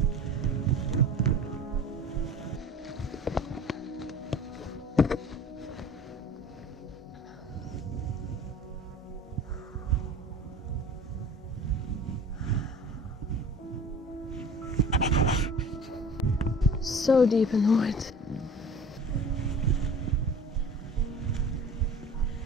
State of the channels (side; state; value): both; normal; correlation 0.42